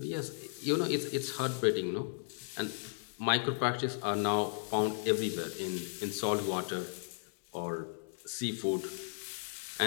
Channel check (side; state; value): right; silent; 54 dB below the other